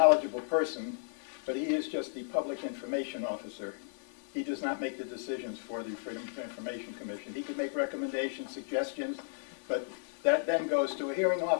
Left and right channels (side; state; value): right; silent; 55 dB below the other